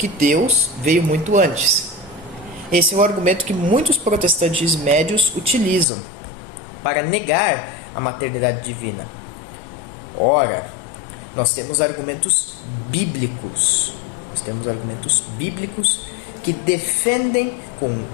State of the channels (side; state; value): right; drops out; at 5.9 s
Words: Deus veio muito antes. Esse é um argumento que muitos protestantes médios utilizam para negar a maternidade divina. Ora, nós temos argumentos bíblicos. Que defendem com